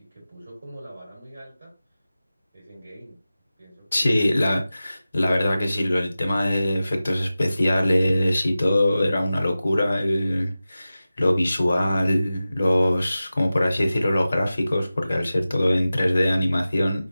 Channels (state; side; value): inverted; both; correlation -0.95